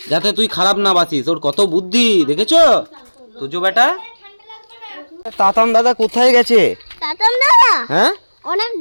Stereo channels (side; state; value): both; inverted; correlation -1.00